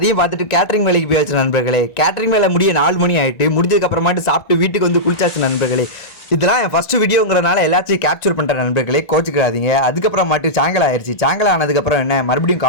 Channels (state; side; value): late; right; 1.9 ms